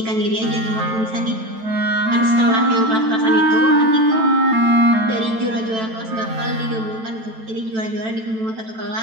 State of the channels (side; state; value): left; late; 9.0 ms